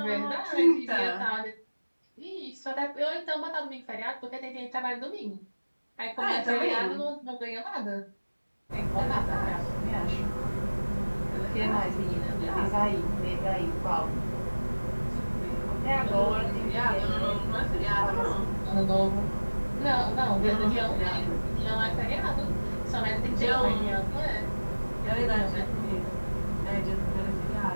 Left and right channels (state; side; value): inverted; both; correlation -1.00